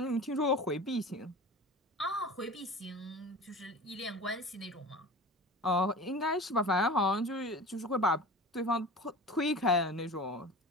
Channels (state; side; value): normal; both; correlation 0.35